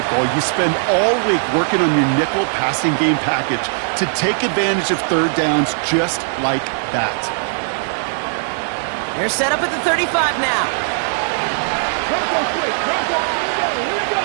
You spend all week working on your nickel passing game package to take advantage of 3rd downs just like that. They're set up at the 35 now.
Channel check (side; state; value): left; silent; 67 dB below the other